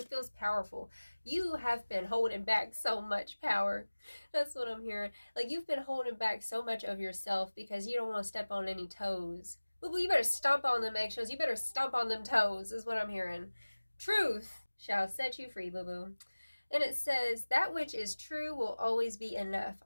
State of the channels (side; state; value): both; inverted; correlation -1.00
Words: feels powerful. You have been holding back so much power. That's what I'm hearing. Like, you've been holding back so much of yourself because you don't want to step on any toes. Boo-boo, you better stomp on them eggshells. You better stomp on them toes, is what I'm hearing. Truth shall set you free, boo-boo. And it says, that which is true will always be enough.